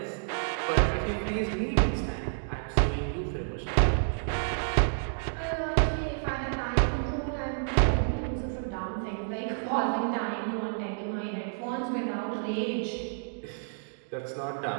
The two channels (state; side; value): silent; left; digital silence